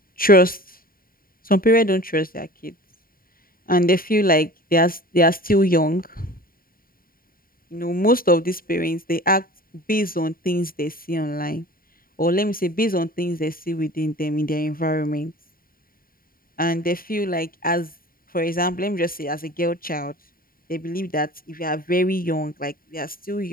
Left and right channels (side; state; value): right; late; 0.42 ms